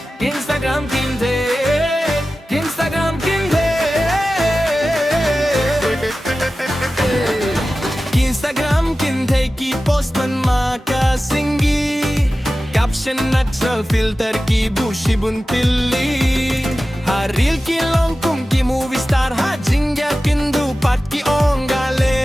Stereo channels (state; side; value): normal; both; correlation 0.95